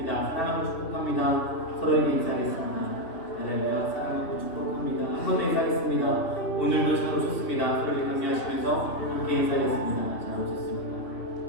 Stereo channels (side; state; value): right; late; 2.7 ms